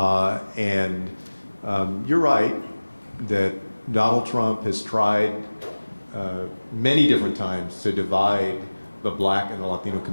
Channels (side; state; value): both; inverted; correlation -1.00